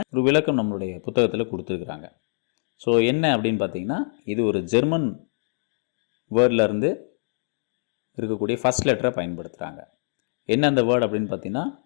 ஒரு விளக்கம் நம்மளுடைய புத்தகத்தில் கொடுத்துருக்குறாங்க. ஸோ என்ன அப்படின்னு பார்த்தீங்கன்னா, இது ஒரு ஜெர்மன் வேர்ட்லேருந்து இருக்கக்கூடிய ஃபஸ்ட் லெட்டரை பயன்படுத்துகிறாங்க. என்ன அந்த வேர்டு அப்படின்னு பார்த்தீங்கன்னா,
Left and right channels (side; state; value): right; silent; digital silence